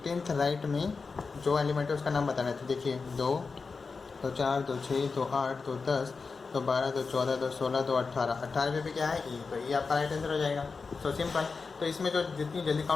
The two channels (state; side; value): quieter; right; 4.6 dB